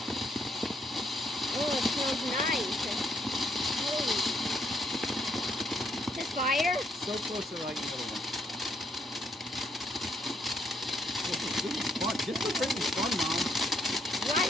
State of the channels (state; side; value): normal; both; correlation 0.73